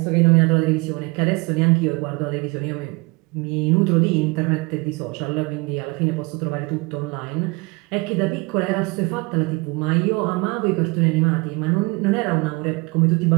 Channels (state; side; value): quieter; left; 26.8 dB